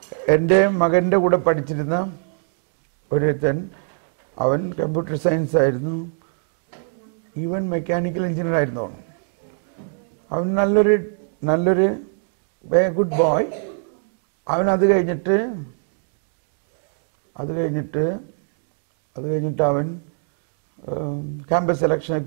എൻ്റെ മകൻ്റെ കൂടെ പഠിച്ചിരുന്ന ഒരുത്തൻ, അവൻ കമ്പ്യൂട്ടർ സയൻസ് ആയിരുന്നു, ഈവൻ മെക്കാനിക്കൽ എഞ്ചിനീയർ ആയിരുന്നു. അവൻ നല്ലൊരു ഗുഡ് ബോയ്. അവൻ അത് കഴിഞ്ഞിട്ട് അവൻ ക്യാമ്പസ് സെലക്ഷനൊക്കെ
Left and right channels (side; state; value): left; silent; 58 dB below the other